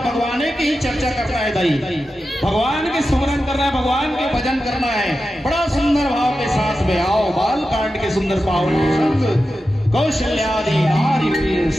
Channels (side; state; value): both; normal; correlation 0.91